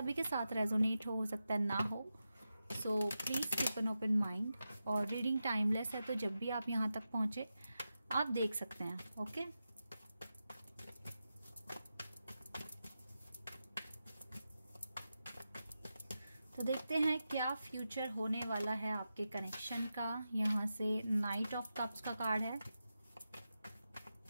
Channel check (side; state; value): both; inverted; correlation -0.90